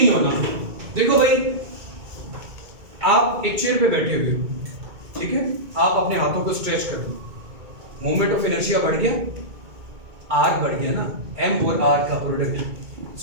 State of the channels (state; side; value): late; left; 2.2 ms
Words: होना। देखो भाई, आप एक चेयर पे बैठे हुए हो, ठीक है? आप अपने हाथों को स्ट्रेच कर दो, मोमेंट ऑफ इनर्शिया बढ़ गया, आर बढ़ गया ना, एम और आर का प्रोडक्ट।